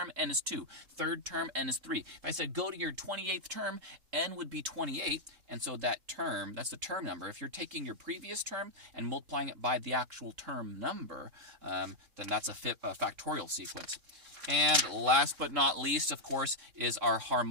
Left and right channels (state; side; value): late; left; 3.7 ms